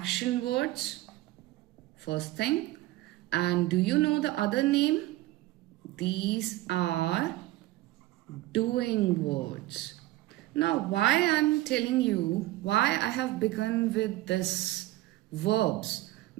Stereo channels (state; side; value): quieter; left; 17.2 dB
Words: words. First thing. And do you know the other name? These are doing words. Now, why I'm telling you why I have begun with this verbs?